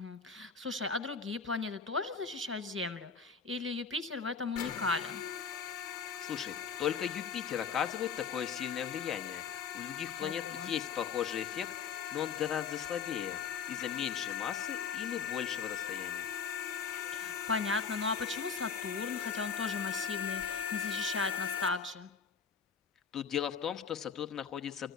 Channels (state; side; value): quieter; right; 6.3 dB